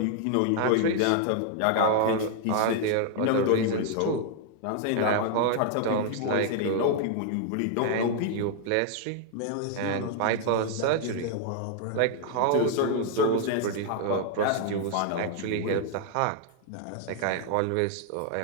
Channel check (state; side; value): different; both; correlation 0.00